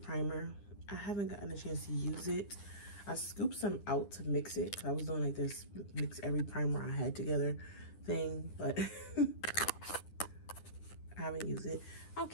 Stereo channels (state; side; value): late; right; 9.9 ms